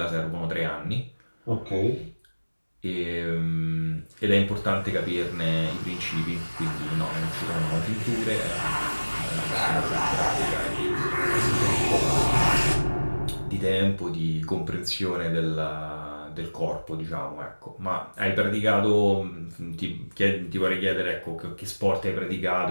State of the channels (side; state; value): both; inverted; correlation -1.00